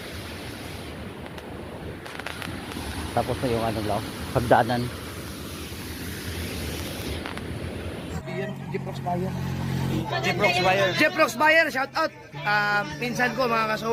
Tapos na yung ano lang, pagdaanan. Jeprox Bayer. Jeprox Bayer. Shout out. Pinsan ko mga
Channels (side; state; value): both; identical; correlation 1.00